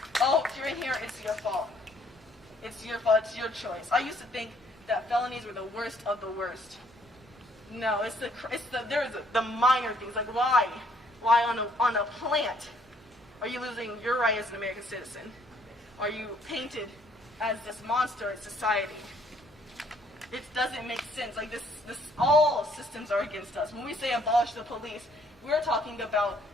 oh, if you're in here, it's your fault. It's your fault, it's your choice. I used to think that felonies were the worst of the worst. No, there's the minor things, like why on a plant are you losing your right as an American citizen? Are you painted as this monster in society? It doesn't make sense. Like this, all systems are against us. When we say abolish the police, we're talking about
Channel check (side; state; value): both; normal; correlation 0.64